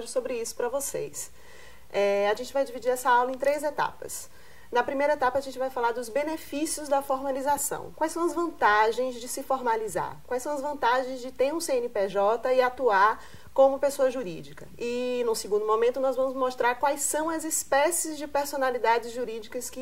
sobre isso para vocês. A gente vai dividir essa aula em 3 etapas. Na primeira etapa, a gente vai falar dos benefícios da formalização. Quais são as vantagens de se formalizar? Quais são as vantagens de ter um CNPJ e atuar como pessoa jurídica? E, no segundo momento, nós vamos mostrar quais são as espécies de personalidades jurídicas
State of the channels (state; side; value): identical; both; correlation 1.00